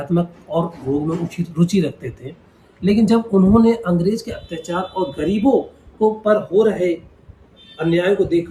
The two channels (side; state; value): both; identical; correlation 1.00